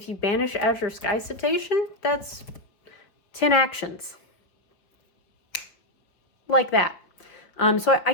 you banish Azure Sky Citation, that's 10 actions. Like that. So I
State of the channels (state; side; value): late; right; 5.2 ms